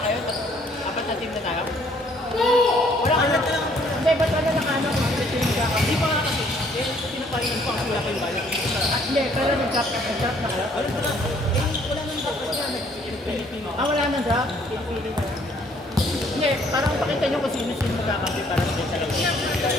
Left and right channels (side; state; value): both; normal; correlation 0.63